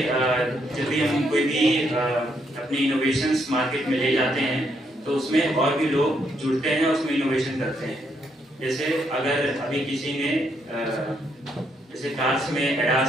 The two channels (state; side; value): normal; both; correlation 0.75